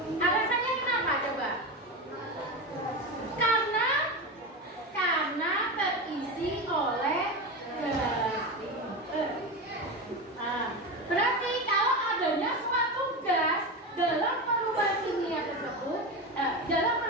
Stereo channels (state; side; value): normal; both; correlation 0.21